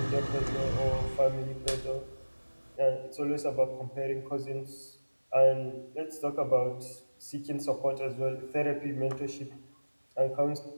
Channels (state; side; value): inverted; both; correlation -1.00